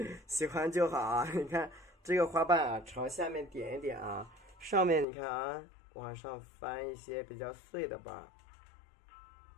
喜欢就好啊。你看这个花瓣啊，朝下面点一点啊，上面你看啊，往上翻一些比较碎的瓣，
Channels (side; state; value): right; drops out; at 5.1 s